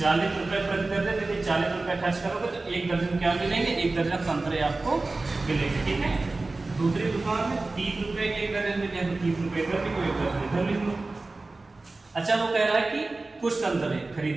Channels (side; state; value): left; quieter; 3.3 dB